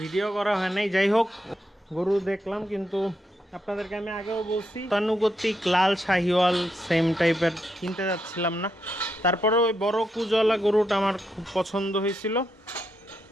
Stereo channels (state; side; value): normal; both; correlation 0.82